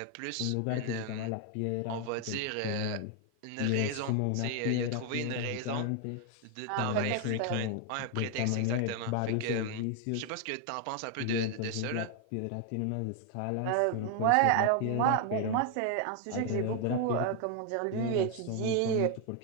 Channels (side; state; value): both; different; correlation 0.01